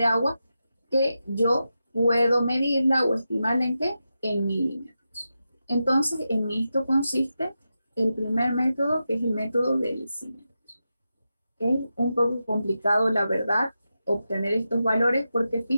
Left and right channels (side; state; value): both; inverted; correlation -0.89